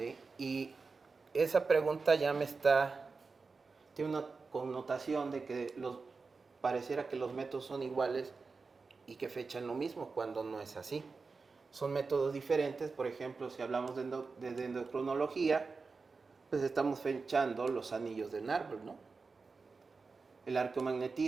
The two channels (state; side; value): quieter; left; 4.4 dB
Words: Y esa pregunta ya tiene una connotación de que pareciera que los métodos son iguales y que fechan lo mismo, cuando no es así. Son métodos diferentes. Por ejemplo, si hablamos de dendrocronología, pues estamos fechando los anillos del árbol, ¿no? El